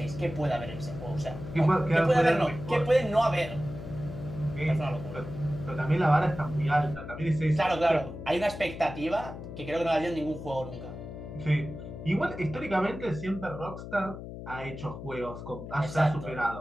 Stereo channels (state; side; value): noise; left; hum, 10 dB below the sound